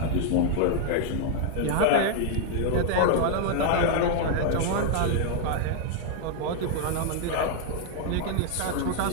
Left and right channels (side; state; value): both; different; correlation 0.00